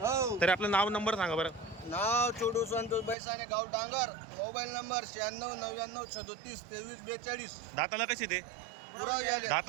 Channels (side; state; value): left; drops out; at 3.2 s